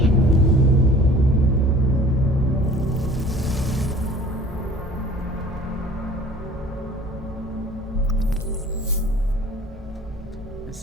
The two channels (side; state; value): both; normal; correlation 0.48